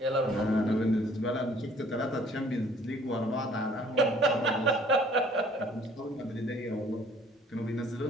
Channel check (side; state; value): both; normal; correlation 0.57